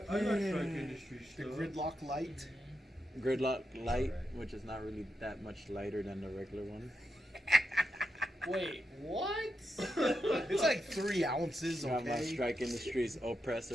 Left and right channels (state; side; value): normal; both; correlation 0.86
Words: I like Strike Industry The stuff. gridlock light. Gridlock light, alright. which is not really that much lighter than the regular one. Wait, what? It's like 3 ounces, Got my okay? Strike Industries